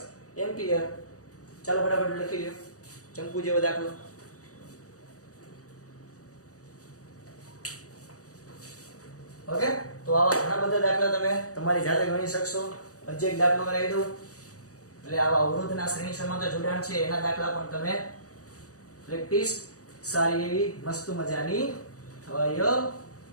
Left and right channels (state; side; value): late; right; 0.66 ms